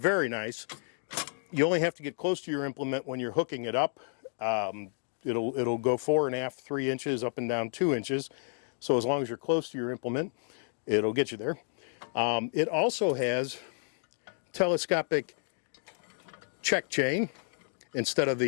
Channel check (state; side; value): silent; right; 57 dB below the other